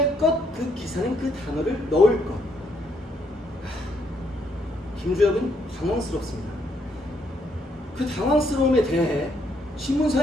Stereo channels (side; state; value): both; normal; correlation 0.72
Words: 것. 그 기사는 그 단어를 넣을 것. 김주혁은 당황스럽습니다. 그 당황스러움에 대해